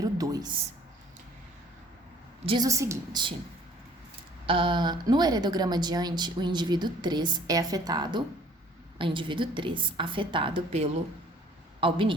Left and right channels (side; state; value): both; normal; correlation 0.55